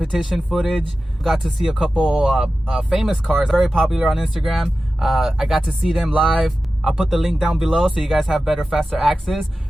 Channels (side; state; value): both; normal; correlation 0.94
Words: footage. Got to see a couple famous cars, very popular on Instagram. I got to see them live. I'll put the link down below so you guys have better, faster access.